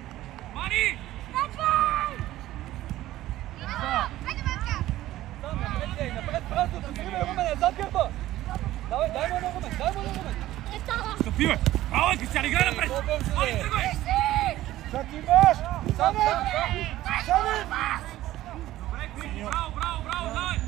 Мани! Напред, празното, сривай, Румене, зад гърба. Дай му на Румен. Стъпи, бе! Браво, Кристиян, играй напред! Мани, тръгвай! Как имаш? Сам. Добре, Кристи, браво, давай!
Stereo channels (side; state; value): left; quieter; 15.1 dB